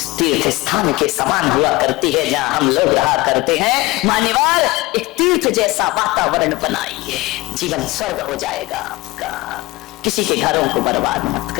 तीर्थ स्थान के समान हुआ करती है जहां हम लोग रहा करते हैं। मान्यवर, एक तीर्थ जैसा वातावरण बनाइए, जीवन स्वर्ग हो जाएगा आपका। किसी के घरों को बर्बाद मत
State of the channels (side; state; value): right; quieter; 21.1 dB